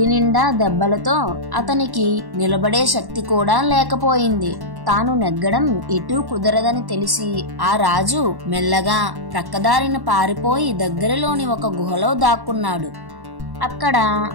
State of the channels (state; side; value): late; left; 1.1 ms